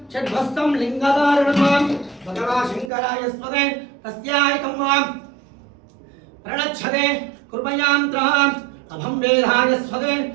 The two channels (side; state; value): left; drops out; at 2.9 s